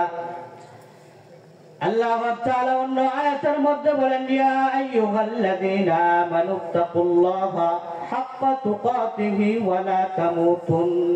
আল্লাহ তাআলা অন্য আয়াতের মধ্যে বলেন ইয়া আইয়ুহাল্লাযীনা আমানুত্তাকুল্লাহা হাক্কা তুকাতিহি ওয়া লা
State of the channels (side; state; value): both; identical; correlation 1.00